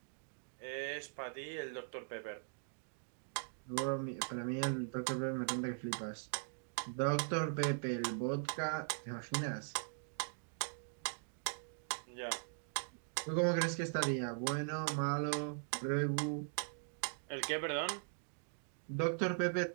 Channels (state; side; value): silent; left; digital silence